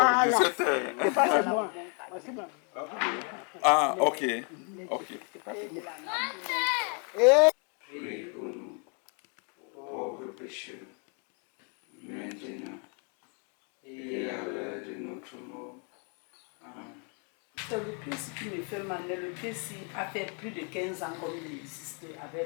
17h. C'est pas c'est moi. C'est moi. Ah, ok. Ok. Priez pour nous, pauvres pécheurs, maintenant et à l'heure de notre mort. Amen. Le Christ qui me fait mal, le Christ a fait plus de 15 ans comme il existe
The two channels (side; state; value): right; quieter; 38.1 dB